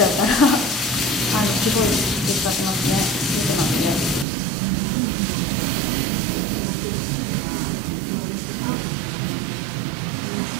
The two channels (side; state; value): left; drops out; at 4.2 s